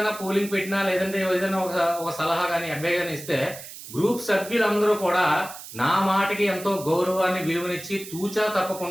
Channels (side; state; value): right; noise; hiss, 13 dB below the sound